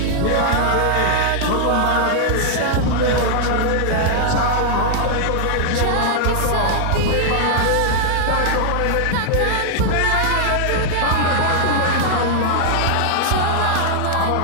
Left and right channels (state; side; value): different; both; correlation 0.00